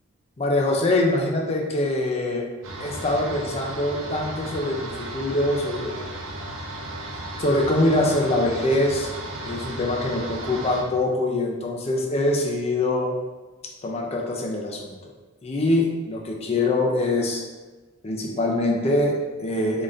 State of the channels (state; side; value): normal; both; correlation 0.39